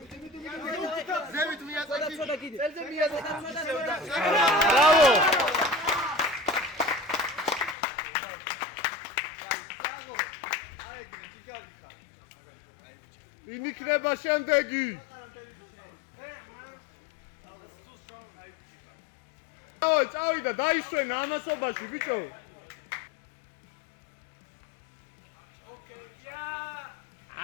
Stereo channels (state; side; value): drops out; right; at 7.8 s